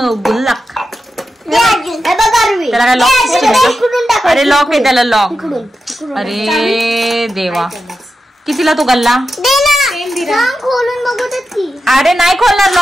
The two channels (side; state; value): both; normal; correlation 0.90